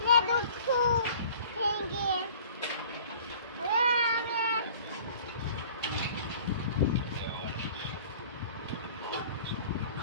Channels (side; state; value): both; inverted; correlation -0.48